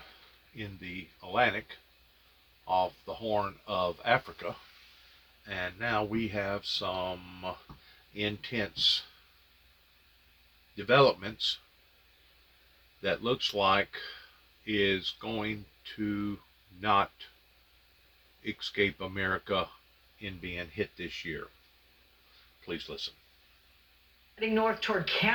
in the Atlantic off the Horn of Africa. And now we have some intense developments that looks like is going to not escape America in being hit this year. Please listen. Heading north toward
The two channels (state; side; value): identical; both; correlation 1.00